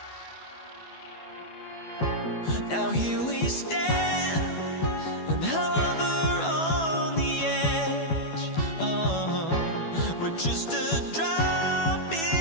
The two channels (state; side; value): late; right; 12 ms